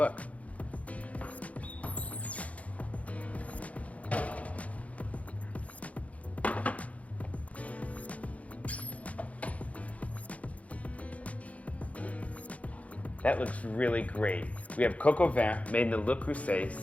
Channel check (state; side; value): late; right; 0.067 ms